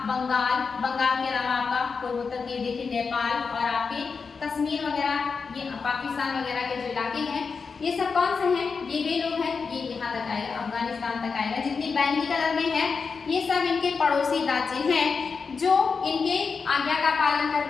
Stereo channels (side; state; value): right; quieter; 5.1 dB